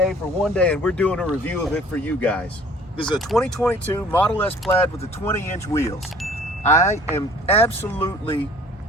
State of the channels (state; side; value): normal; both; correlation 0.52